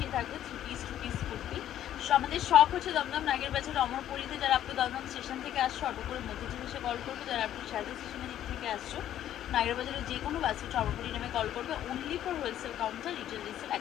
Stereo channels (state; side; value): quieter; right; 11.5 dB